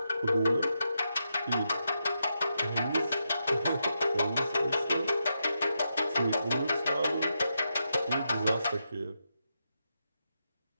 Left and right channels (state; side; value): inverted; both; correlation -0.85